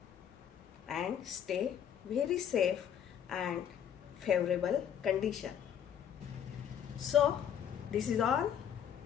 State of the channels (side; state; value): right; quieter; 9.0 dB